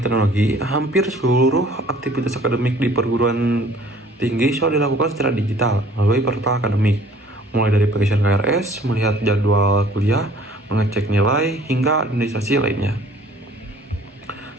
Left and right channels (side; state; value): both; normal; correlation 0.54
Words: hampir seluruh aktivitas akademik di perguruan tinggi sudah dilakukan secara digital melalui portal akademik, mulai dari pengisian KRS, melihat jadwal kuliah, mengecek nilai, hingga administrasi lainnya.